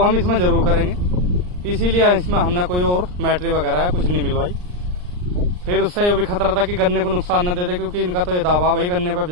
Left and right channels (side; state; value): left; late; 39 ms